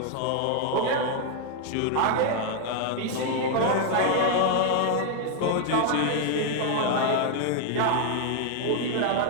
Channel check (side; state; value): both; different; correlation 0.00